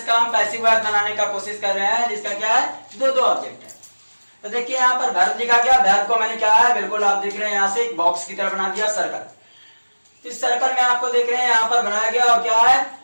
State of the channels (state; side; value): inverted; both; correlation -1.00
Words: का हम पैसिव वॉइस बनाने का कोशिश कर रहे हैं जिसका क्या है, दो ऑब्जेक्ट है। तो देखिए यहाँ पर वर्ब लिखा गया, वर्ब को मैंने क्या है बिल्कुल आप देख रहे हैं यहाँ से एक बॉक्स की तरह बना दिया सर्कल। इस सर्कल में आपको देख रहे हैं यहाँ पर बनाया गया और क्या है